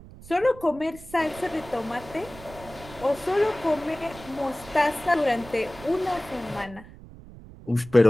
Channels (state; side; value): noise; right; rumble, 18 dB below the sound